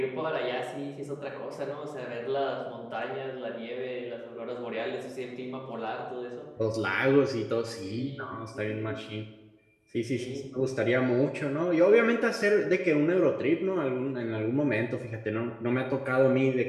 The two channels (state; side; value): identical; both; correlation 1.00